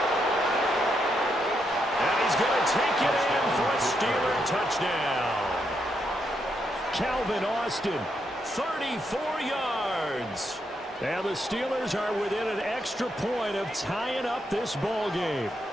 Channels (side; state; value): both; normal; correlation 0.80